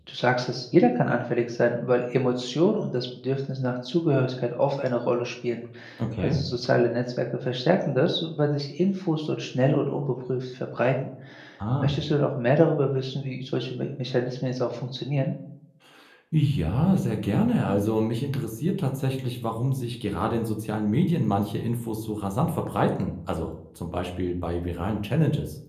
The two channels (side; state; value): both; identical; correlation 1.00